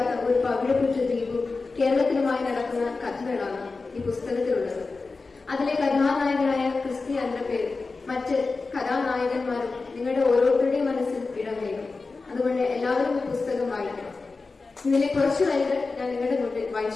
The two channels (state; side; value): quieter; right; 4.0 dB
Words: ഒരു പവിഴപ്പുറ്റ ദ്വീപും കേരളത്തിലുമായി നടക്കുന്ന കഥകളാണ് ഈ പുസ്തകത്തിലുള്ളത്. അതിലെ കഥാനായകനായ ക്രിസ്റ്റിയാന്റെ പേര് മറ്റ് കഥാനായകന്മാരും നിങ്ങളുടെ ഓരോരുത്തരുടെയും മനസ്സിൽ ഇടം നേടും. അതുകൊണ്ട് എല്ലാവരും ഈ പുസ്തകം വായിക്കണം. ഇതിലെ കുറച്ചു വരികൾ ഞാൻ നിങ്ങളുടെ മുന്നിൽ